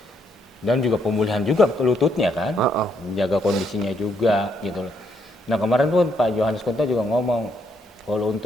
Dan juga pemulihan juga ke lututnya kan, menjaga kondisinya juga gitu loh. Nah kemarin pun Pak Yohanes Kunto juga ngomong, kalau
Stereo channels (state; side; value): normal; both; correlation 0.74